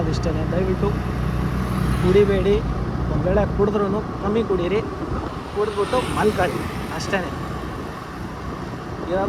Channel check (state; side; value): identical; both; correlation 1.00